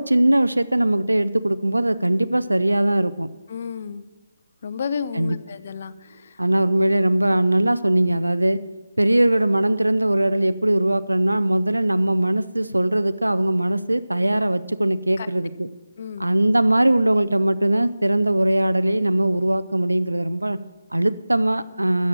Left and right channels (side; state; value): both; inverted; correlation -0.98